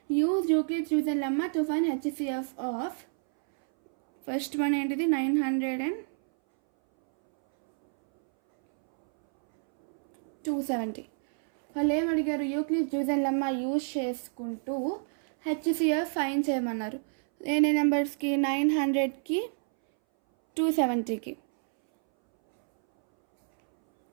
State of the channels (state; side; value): silent; left; 59 dB below the other